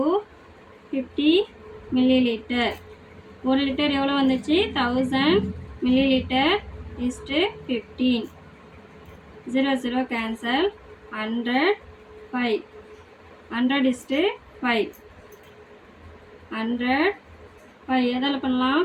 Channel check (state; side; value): identical; both; correlation 1.00